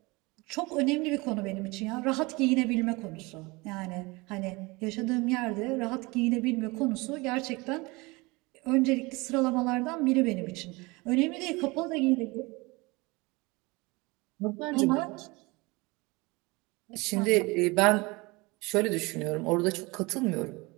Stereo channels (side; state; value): left; quieter; 24.5 dB